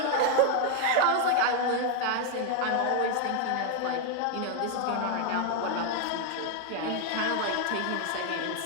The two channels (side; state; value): both; different; correlation 0.01